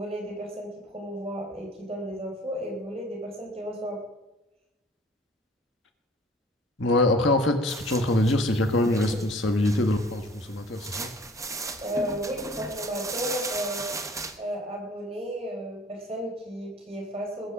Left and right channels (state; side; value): normal; both; correlation 0.50